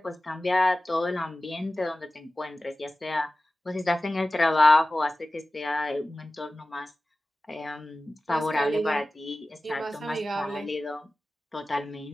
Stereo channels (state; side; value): normal; both; correlation 0.96